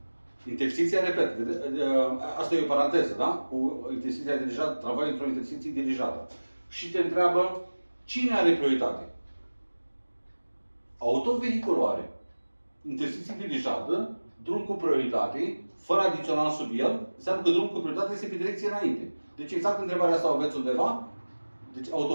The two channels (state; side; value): inverted; both; correlation -1.00